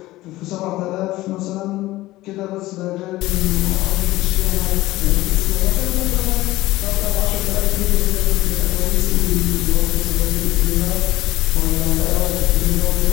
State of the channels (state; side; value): quieter; right; 17.6 dB